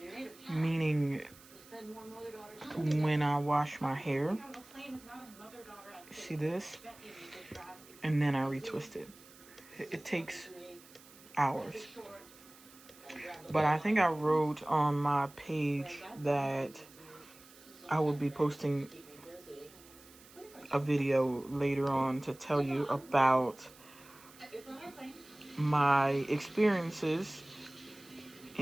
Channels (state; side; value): noise; right; hiss, 22 dB below the sound